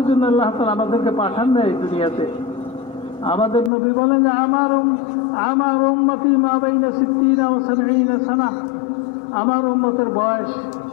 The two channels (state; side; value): drops out; right; at 3.7 s